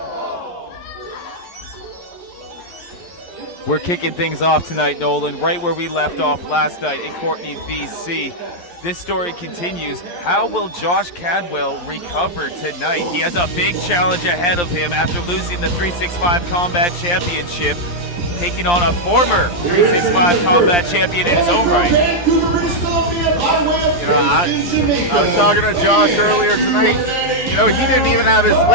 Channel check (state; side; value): late; right; 11 ms